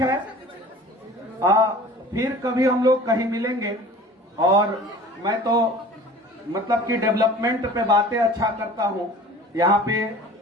है, फिर कभी हम लोग कहीं मिलेंगे। और मैं तो मतलब कि डेवलपमेंट पे बातें अच्छा करता हूँ। यहाँ पे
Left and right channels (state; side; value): normal; both; correlation 0.44